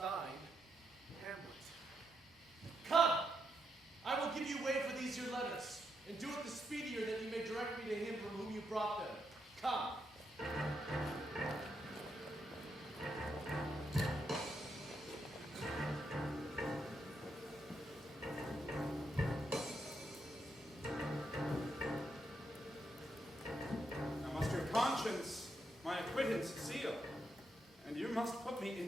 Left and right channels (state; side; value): normal; both; correlation 0.81